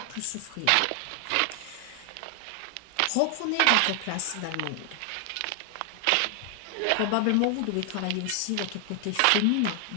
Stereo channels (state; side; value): different; both; correlation 0.00